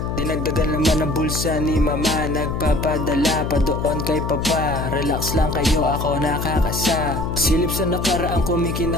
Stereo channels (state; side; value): noise; left; hum, 3 dB below the sound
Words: Dinagdagan naman ang bulsa ni mama. Nagpapadala pa doon kay papa. Relax lang kayo, ako nakakasa. Silip sa nakaraang